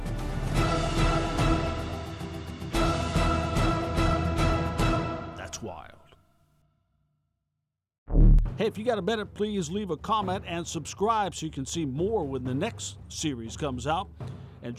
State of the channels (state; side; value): identical; both; correlation 1.00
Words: That's wild. Hey, if you got a minute, please leave a comment and subscribe so you can see more when the next series comes out. And